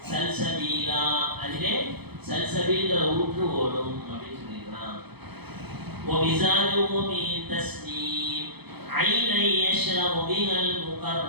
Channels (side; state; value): left; late; 0.98 ms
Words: சல்சபீலா. அதிலே சல்சபீல்ங்கிற ஊற்று ஓடும் அப்படின்னு சொல்லியிருக்கான். وَمِزَاجُهُ مِن تَسْنِيمٍ عَيْنًا يَشْرَبُ بِهَا